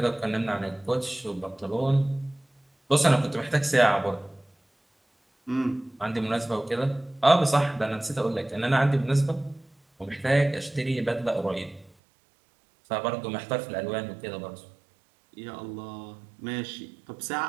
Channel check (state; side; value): drops out; left; at 11.9 s